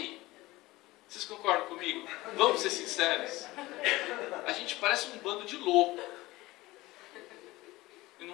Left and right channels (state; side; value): quieter; right; 19.3 dB